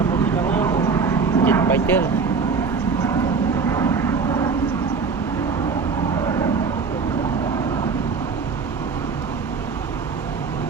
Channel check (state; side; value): quieter; left; 5.1 dB